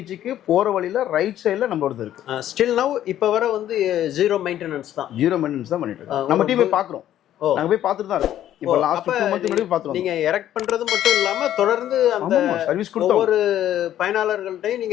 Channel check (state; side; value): quieter; right; 11.9 dB